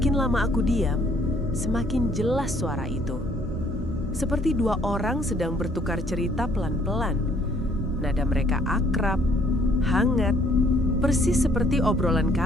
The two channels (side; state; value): both; normal; correlation 0.63